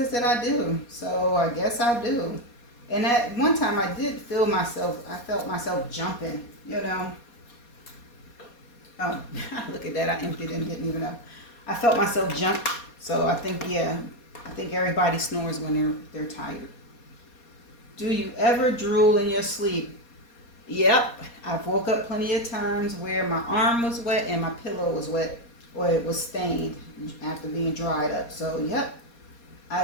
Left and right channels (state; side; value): late; right; 4.2 ms